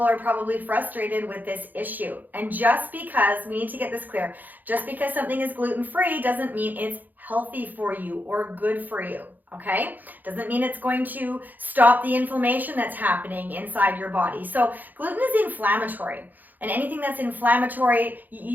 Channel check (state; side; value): late; left; 0.084 ms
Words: are probably frustrated with this issue. And just because, we need to get this clear, just because something is gluten-free doesn't mean it's healthy for you or good for you, okay? Doesn't mean it's going to stop the inflammation that's happening inside your body. So gluten is inflammatory, and anything that's inflammatory, if